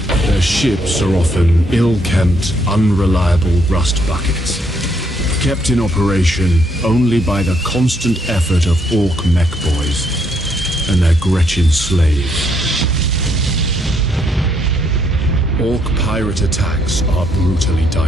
Their ships are often ill-kempt, unreliable rust buckets, kept in operation only by the constant effort of Orc mech boys and their Gretchen slaves. Orc pirate attacks are brutally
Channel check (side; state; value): both; normal; correlation 0.73